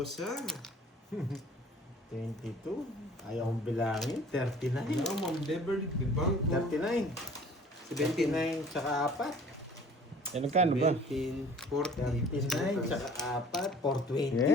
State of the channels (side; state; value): both; normal; correlation 0.50